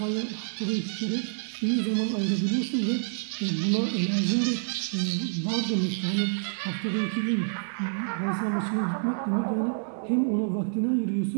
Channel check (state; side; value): silent; left; digital silence